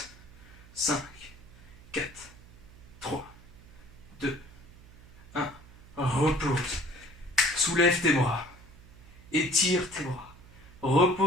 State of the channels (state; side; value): noise; right; hum, 21 dB below the sound